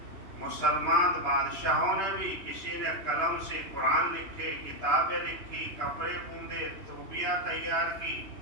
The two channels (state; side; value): late; left; 3.0 ms